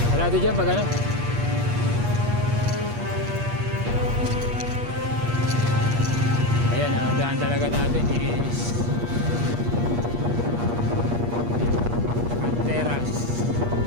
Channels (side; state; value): left; late; 8.4 ms